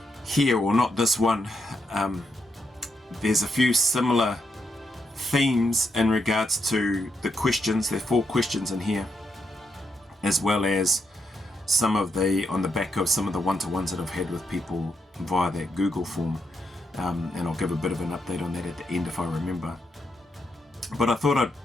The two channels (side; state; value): both; normal; correlation 0.81